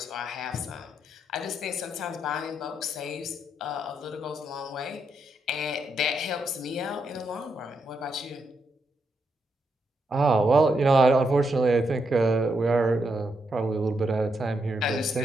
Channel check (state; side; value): normal; both; correlation 0.81